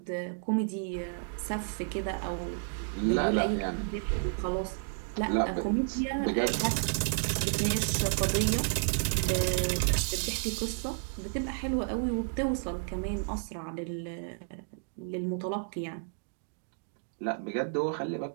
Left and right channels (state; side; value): silent; left; digital silence